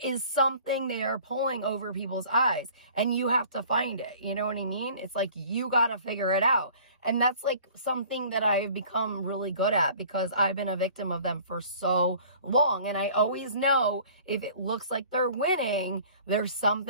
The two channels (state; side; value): inverted; both; correlation -0.49